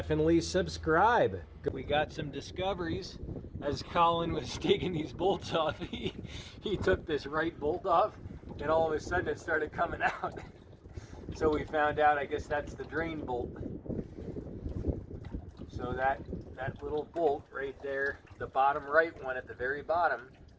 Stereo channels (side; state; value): both; identical; correlation 1.00